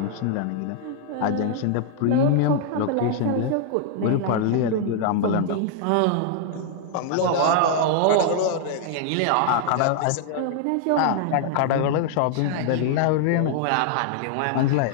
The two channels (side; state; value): both; different; correlation 0.00